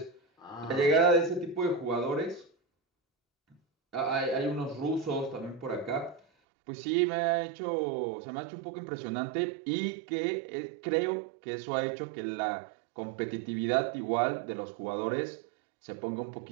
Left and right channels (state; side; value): drops out; left; at 6.2 s